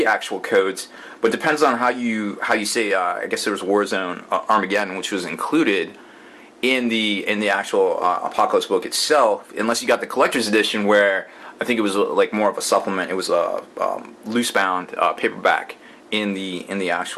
actual codes, but depends on how you say. I guess there was Warzone Armageddon, which was included in the actual Apocalypse book itself, unless you got the collector's edition where I think it was like more of a supplement. It was a loose bound paperback in the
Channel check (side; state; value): both; identical; correlation 1.00